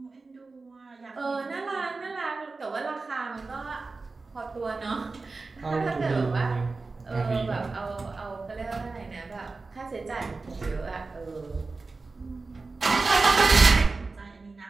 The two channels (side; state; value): left; quieter; 3.8 dB